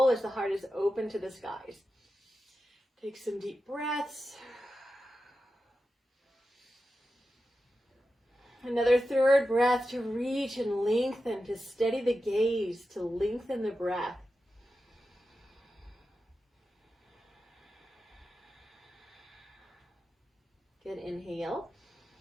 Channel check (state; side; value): normal; both; correlation 0.91